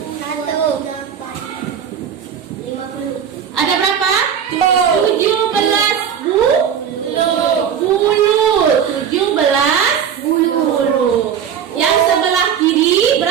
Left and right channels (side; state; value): left; quieter; 8.2 dB